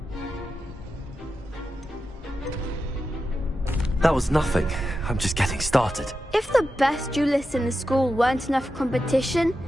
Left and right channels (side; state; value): both; normal; correlation 0.90